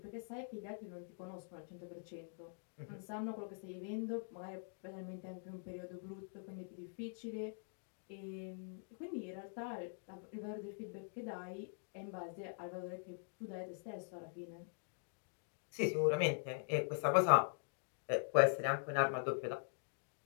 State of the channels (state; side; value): silent; right; digital silence